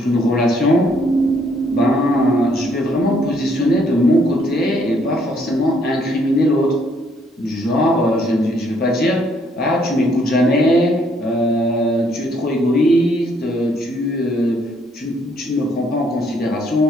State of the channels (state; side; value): normal; both; correlation 0.68